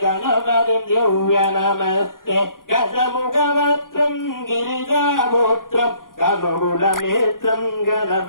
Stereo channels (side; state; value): right; late; 0.90 ms